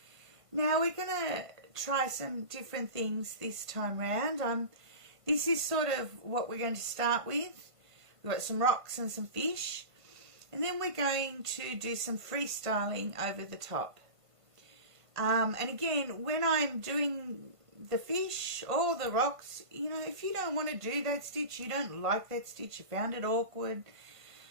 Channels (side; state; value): left; late; 1.5 ms